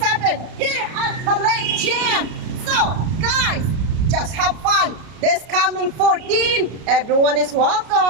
here at Tulic Gym. So, guys, just have fun. This coming 14, everyone is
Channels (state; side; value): late; left; 33 ms